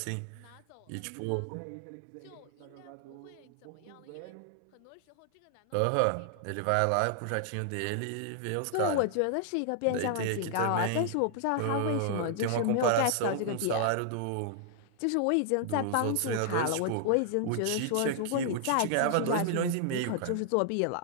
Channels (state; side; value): different; both; correlation 0.00